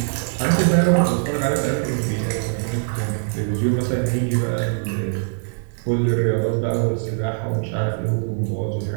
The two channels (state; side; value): silent; left; 64 dB below the other